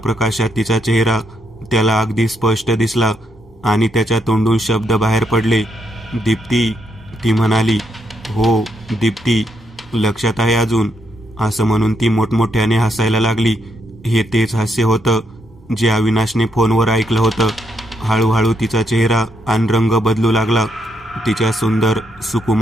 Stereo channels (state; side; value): normal; both; correlation 0.78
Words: तिचा चेहरा त्याला अगदी स्पष्ट दिसला आणि त्याच्या तोंडून शब्द बाहेर पडले. दीप्ती, ती म्हणाली. हो दीप्ती, लक्षात आहे अजून, असं म्हणून ती मोठमोठ्याने हसायला लागली. हे तेच हास्य होतं जे अविनाशने फोनवर ऐकलं होतं. हळूहळू तिचा चेहरा आणि रंग बदलू लागला. तिच्या सुंदर